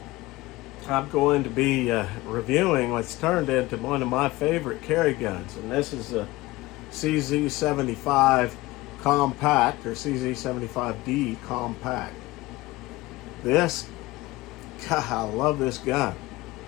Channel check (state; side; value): quieter; right; 19.7 dB